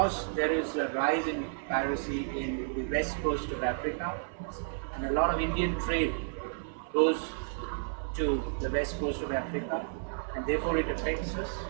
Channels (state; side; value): silent; left; 57 dB below the other